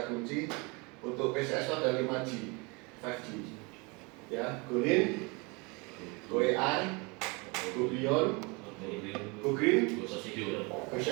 kunci. Untuk PCS itu ada 5G, 5G ya, Go Lean, Go AI, Go Beyond, Go Green, Go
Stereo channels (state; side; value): quieter; left; 28.6 dB